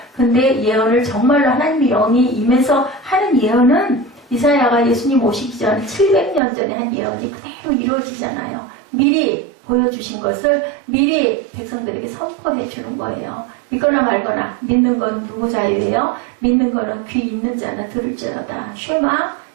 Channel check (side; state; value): left; drops out; at 6.4 s